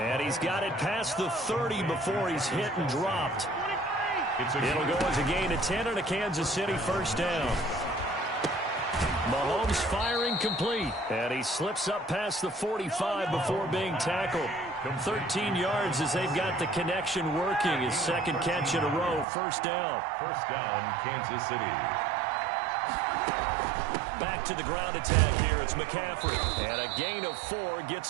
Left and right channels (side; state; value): left; drops out; at 19.2 s